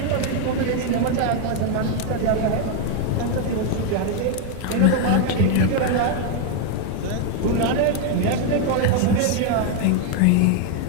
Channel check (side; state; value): both; different; correlation 0.01